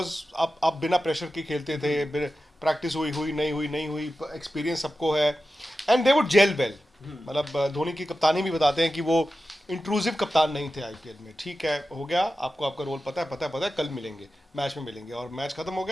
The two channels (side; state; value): both; normal; correlation 0.93